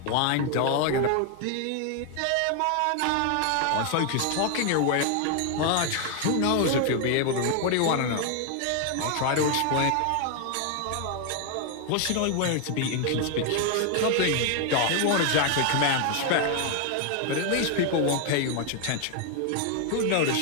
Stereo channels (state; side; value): different; both; correlation 0.01